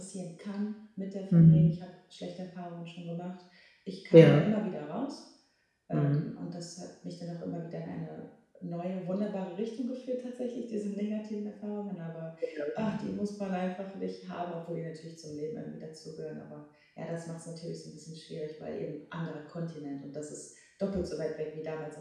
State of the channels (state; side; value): identical; both; correlation 1.00